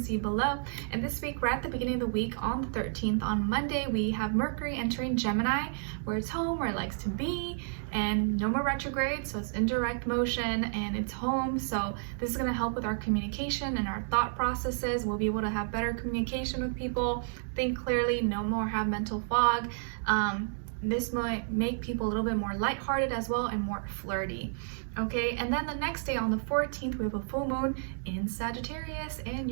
see below. And this week, right at the beginning of the week, on the 13th, on Monday, we have Mercury entering Gemini, where it's home, where it likes to be, and no more retrograde, so it's in direct motion and it's home. So this is going to help with our communication and our thought processes. We'll be able to have better communication with people, think clearly, no more have mental fog. This might make people a little bit more lighthearted as well and more flirty. Okay, and then the next day on the 14th, we have a full moon in Sagittarius in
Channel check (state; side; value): silent; left; digital silence